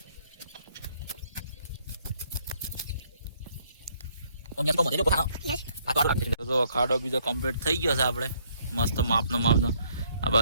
ખાડો બીજો કમ્પ્લીટ થઈ ગયો છે. આપણે મસ્ત માપનો. આ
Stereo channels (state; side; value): inverted; both; correlation -0.67